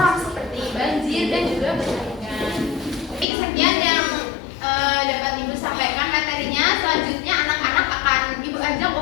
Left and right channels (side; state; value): right; drops out; at 3.2 s